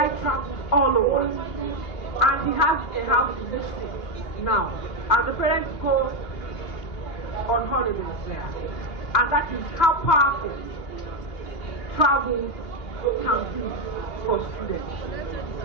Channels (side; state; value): right; late; 2.6 ms